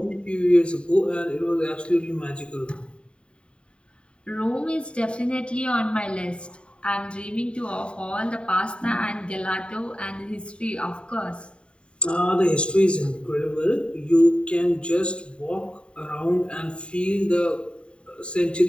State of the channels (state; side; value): late; right; 0.055 ms